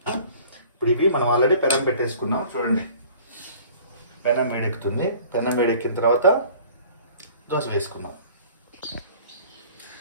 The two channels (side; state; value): both; inverted; correlation -0.49